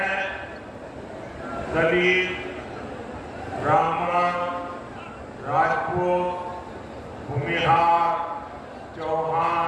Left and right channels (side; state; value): both; identical; correlation 1.00